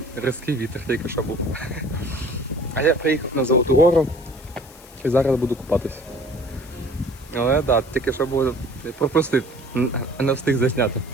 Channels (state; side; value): noise; left; hiss, 22 dB below the sound